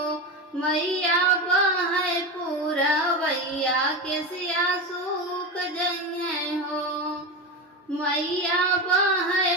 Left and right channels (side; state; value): both; normal; correlation 0.20